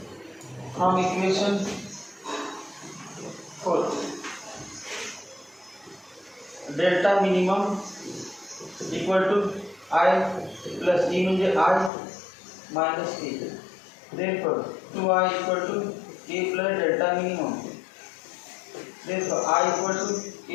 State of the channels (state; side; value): drops out; right; at 11.9 s